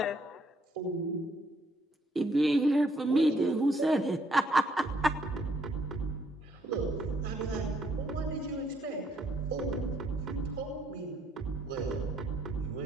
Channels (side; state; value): both; normal; correlation 0.70